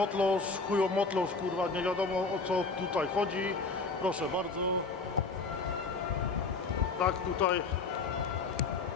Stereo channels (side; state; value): right; quieter; 4.1 dB